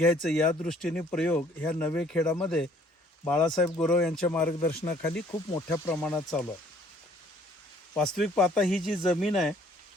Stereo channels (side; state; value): both; normal; correlation 0.59